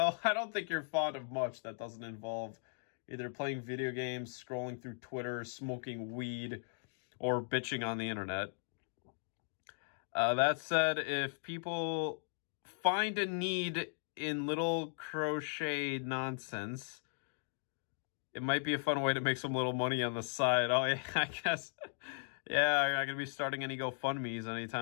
I don't think you're fond of much that doesn't involve, either playing video games, scrolling through Twitter, smoking weed, or bitching on the internet. That said, if people find a need in little crochet nonsense, it might be a fun way to make some little money on the side. Oh, yeah, I guess. Yeah, I'm not going to be starting any GoFundMes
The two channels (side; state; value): right; silent; digital silence